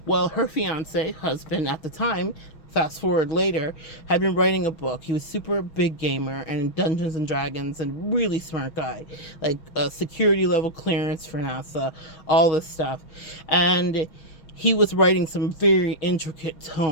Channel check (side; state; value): right; late; 6.3 ms